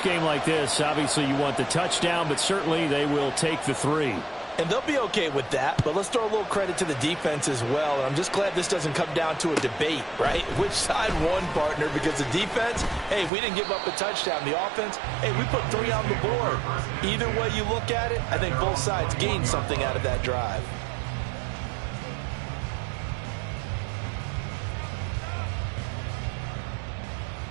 game like this, obviously you want the touchdown, but certainly they will take the 3. And they'll be okay with that, but let's throw a little credit to the defense as well. And I'm just glad this doesn't come down to a debate, right? Which side won, partner? Because the defense, hey, we didn't give up a touchdown. The offense, hey, we put 3 on the board. Either way you look at it, I think both sides gained something out of that drive.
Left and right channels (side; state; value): left; drops out; at 13.3 s